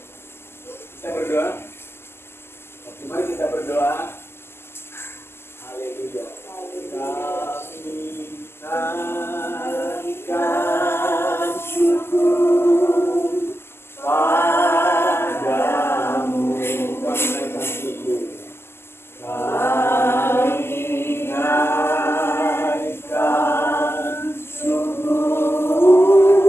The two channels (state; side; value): late; right; 0.12 ms